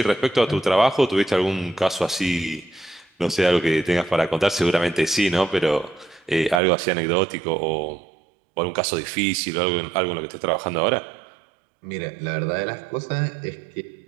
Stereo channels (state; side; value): drops out; left; at 6.6 s